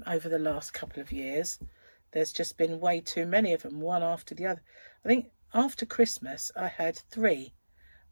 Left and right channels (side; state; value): both; inverted; correlation -1.00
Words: the last couple of years, there's just been way too many of them, one after the other. I think after Christmas I had 3,